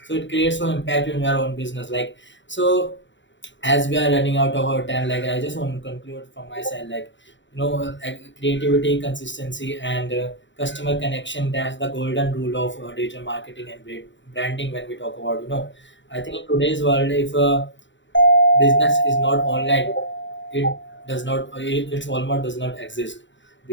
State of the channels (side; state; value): right; late; 0.54 ms